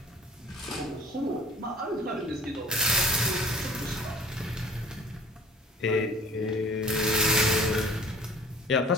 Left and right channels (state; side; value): normal; both; correlation 0.49